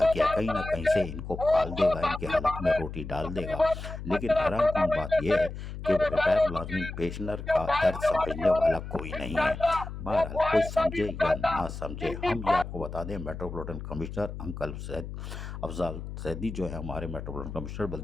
किया, कहीं ना कहीं से इनको पाल देगा, इनके हलक में रोटी डाल देगा। लेकिन हैरान कौन बात यह है कि रिटायर मुलाजमीन पेंशनर का दर्द समझने वाला कोई नहीं है। बहरहाल कोई समझे या ना समझे, हम ये आपको बता दें, metropolitan commissioner uncle Afzal Zaidi जो है हमारे मेट्रोपॉलिटन कमिश्नर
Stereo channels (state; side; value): noise; left; hum, 9 dB below the sound